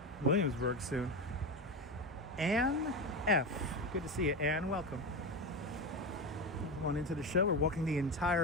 Williamsburg soon. Ann F. Good to see you, Ann. Welcome. Come on into the show. We're walking the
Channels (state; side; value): normal; both; correlation 0.18